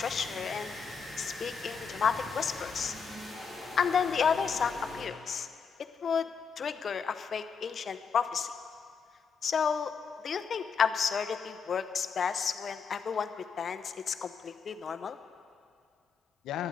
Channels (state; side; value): quieter; right; 6.0 dB